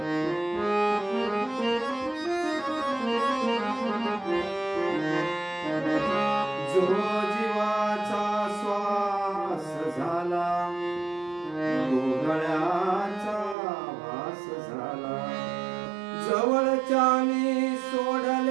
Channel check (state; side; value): drops out; left; at 13.6 s